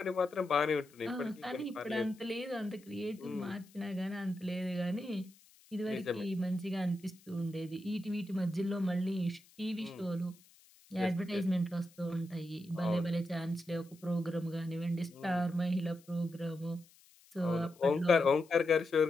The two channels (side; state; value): left; noise; hiss, 27 dB below the sound